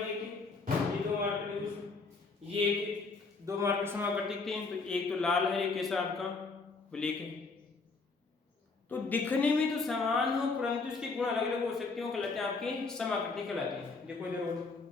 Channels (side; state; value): right; quieter; 4.1 dB